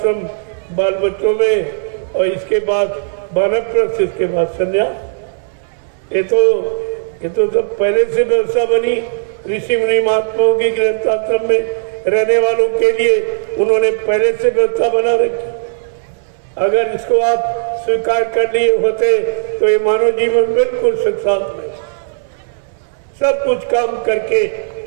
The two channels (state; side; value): silent; left; 63 dB below the other